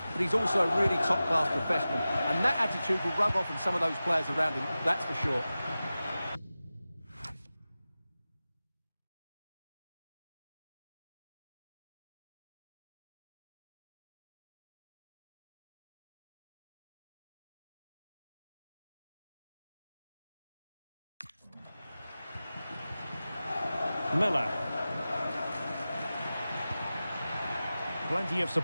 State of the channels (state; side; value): inverted; both; correlation -0.95